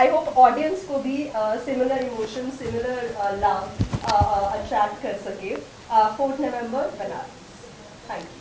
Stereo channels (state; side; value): identical; both; correlation 1.00